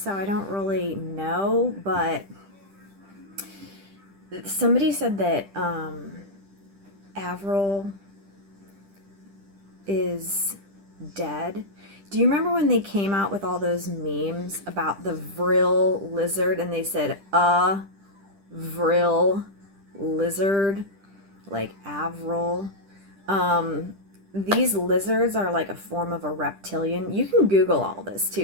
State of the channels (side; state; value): left; late; 10 ms